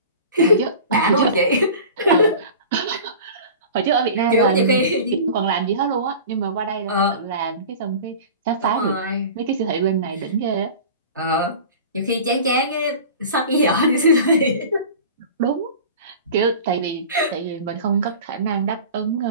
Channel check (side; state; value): both; inverted; correlation -0.38